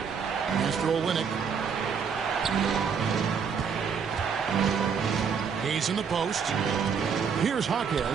Mr. Olynyk. He's in the post. Here's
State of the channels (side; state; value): left; quieter; 6.4 dB